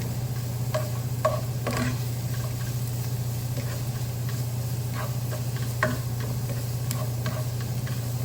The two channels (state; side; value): identical; both; correlation 1.00